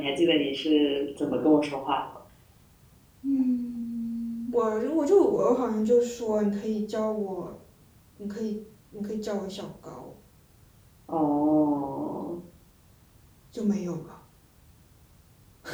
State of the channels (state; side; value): identical; both; correlation 1.00